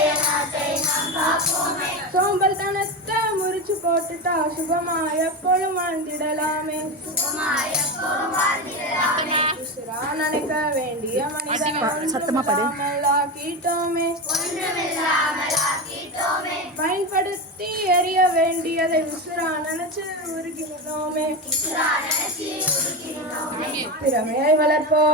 நாட்டை நாம் காப்போமே. சோம்பல் தனத்தை முறிச்சு போட்டுட்டா சுகமா எப்பொழுதும் வாழ்ந்திடலாமே உசுரா நினைக்க வேண்டிய மனிதனாக்கீட்டோமே பயன்படுத்தி எறிய வேண்டியதை உசுரா நினைச்சு உருகினோமே. திறமையை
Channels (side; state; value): both; normal; correlation 0.18